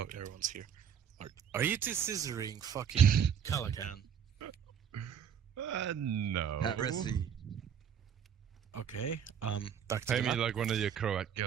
everyone's here. Are you two scissoring fucking Calacan? No. Heresy. Okay. Back to Pay the me map. like one of your Croat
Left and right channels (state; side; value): quieter; left; 8.2 dB